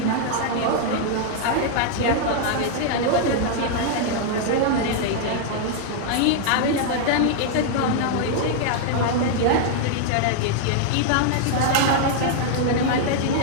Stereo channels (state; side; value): different; both; correlation -0.01